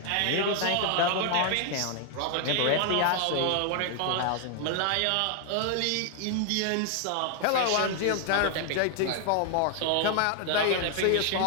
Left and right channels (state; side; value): different; both; correlation 0.00